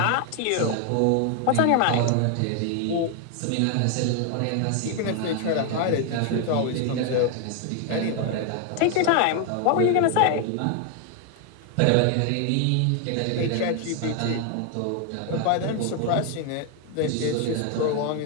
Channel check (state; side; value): different; both; correlation 0.01